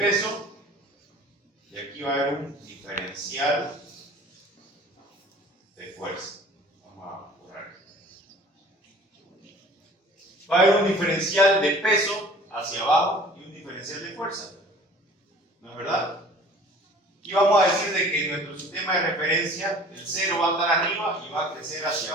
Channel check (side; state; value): both; normal; correlation 0.48